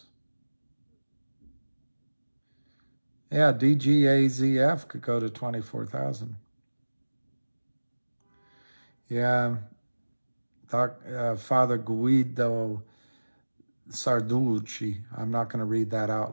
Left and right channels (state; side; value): inverted; both; correlation -1.00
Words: Yeah, DGAZF could go to 24,000. Yeah, Father Guido Sarducci. I'm not going to read that out